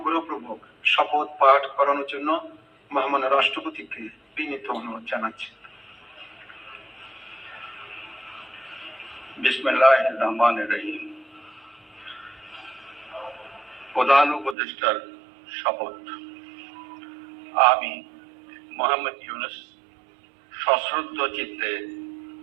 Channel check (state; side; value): drops out; left; at 14.6 s